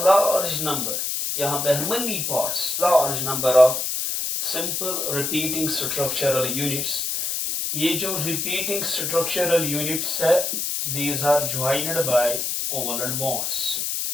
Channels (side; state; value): left; noise; hiss, 1 dB below the sound